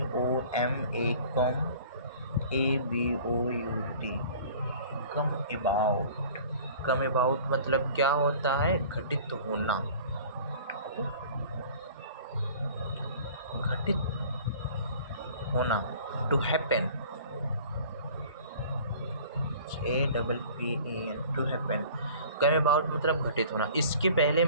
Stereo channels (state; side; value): inverted; both; correlation -0.46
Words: come ABOUT come about. Come about मतलब क्या होता है? घटित होना, घटित होना, to happen. APPEN to happen. Come about मतलब घटित होना। इसके पहले